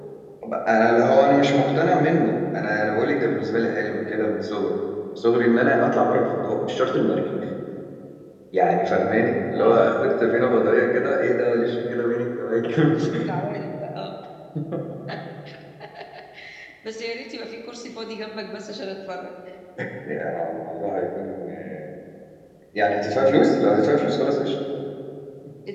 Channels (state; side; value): identical; both; correlation 1.00